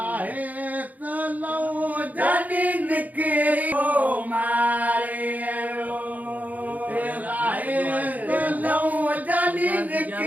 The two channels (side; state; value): left; late; 0.079 ms